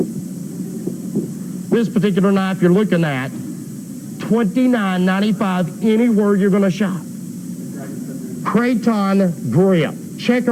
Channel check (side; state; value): both; identical; correlation 1.00